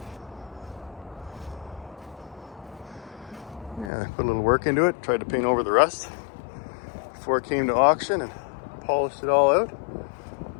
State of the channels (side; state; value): right; drops out; at 3.9 s